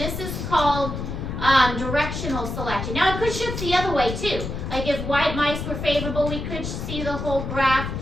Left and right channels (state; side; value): noise; left; rumble, 5 dB below the sound